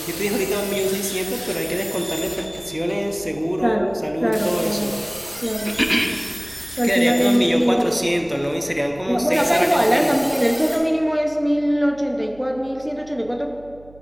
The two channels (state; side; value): noise; right; hum, 23 dB below the sound